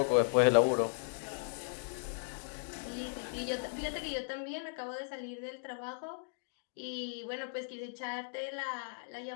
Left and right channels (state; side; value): silent; right; digital silence